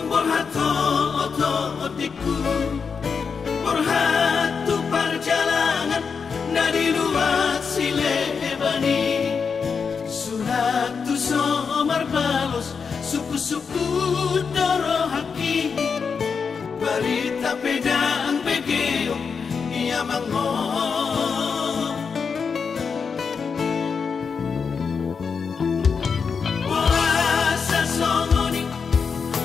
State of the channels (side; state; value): right; quieter; 5.7 dB